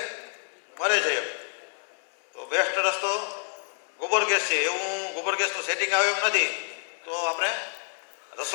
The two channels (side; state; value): right; silent; 59 dB below the other